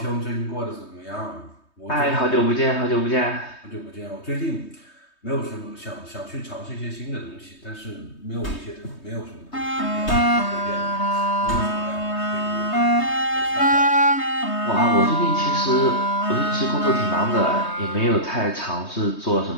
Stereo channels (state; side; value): late; right; 3.2 ms